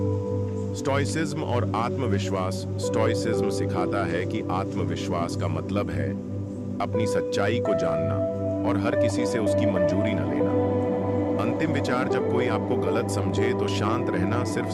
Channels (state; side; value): identical; both; correlation 1.00